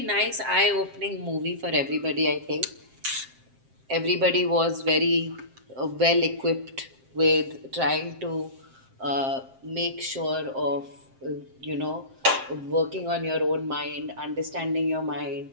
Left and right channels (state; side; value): late; left; 7.6 ms